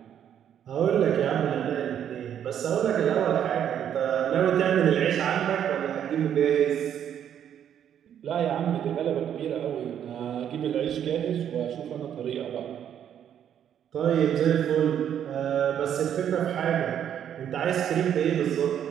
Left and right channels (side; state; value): left; quieter; 9.5 dB